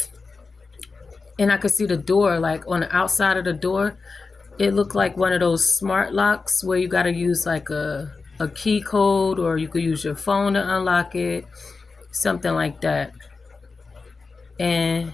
I could see the door, like on the outside of the door, it looked like one of those smart locks where you got to use like a key code, or you could use your phone to unlock it, something like that. And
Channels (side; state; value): right; quieter; 4.3 dB